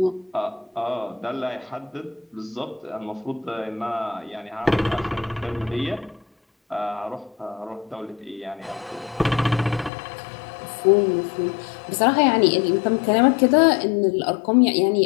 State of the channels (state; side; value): drops out; right; at 9.9 s